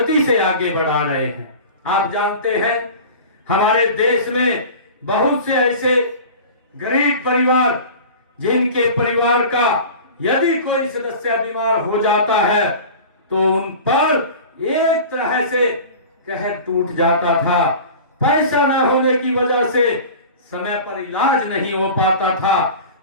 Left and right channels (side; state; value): both; inverted; correlation -0.37